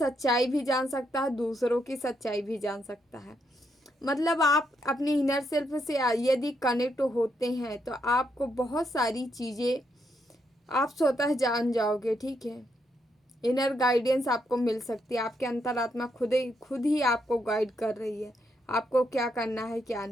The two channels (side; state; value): both; normal; correlation 0.78